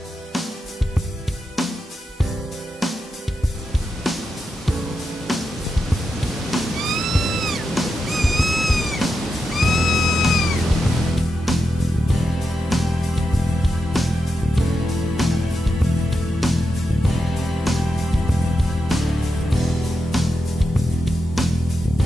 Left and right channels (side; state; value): both; normal; correlation 0.88